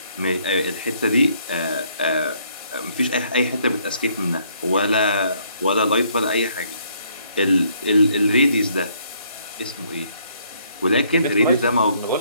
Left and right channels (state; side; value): inverted; both; correlation -0.67